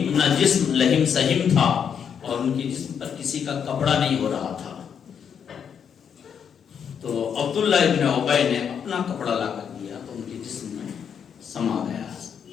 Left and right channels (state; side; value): quieter; right; 7.6 dB